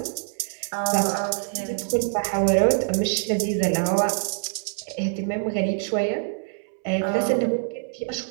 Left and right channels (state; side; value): silent; left; 62 dB below the other